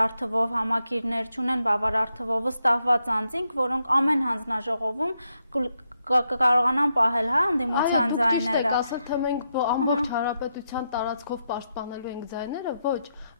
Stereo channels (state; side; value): inverted; both; correlation -0.82